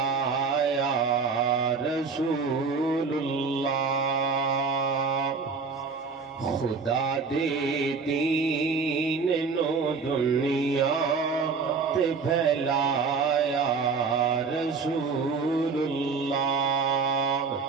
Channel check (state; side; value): quieter; left; 4.9 dB